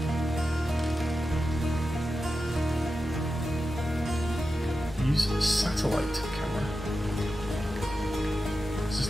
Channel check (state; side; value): normal; both; correlation 0.91